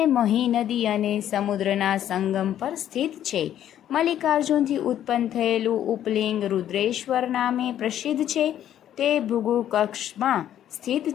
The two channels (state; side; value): quieter; right; 11.0 dB